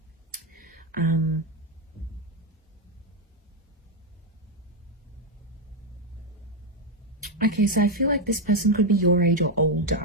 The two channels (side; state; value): both; normal; correlation 0.04